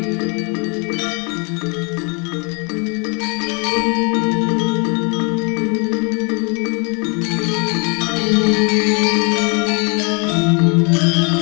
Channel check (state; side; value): quieter; right; 33.8 dB